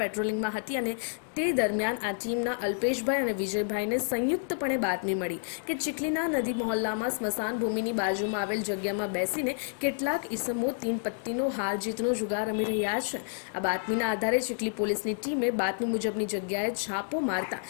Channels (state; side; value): silent; right; digital silence